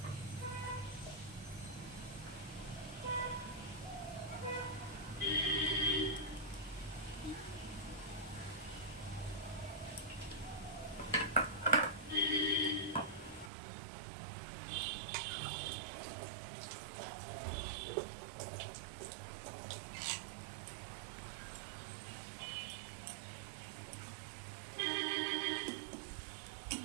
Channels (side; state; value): left; drops out; at 13.5 s